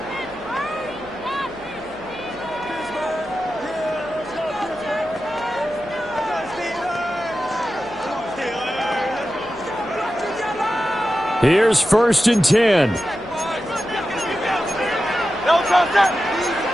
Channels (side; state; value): right; noise; hum, 23 dB below the sound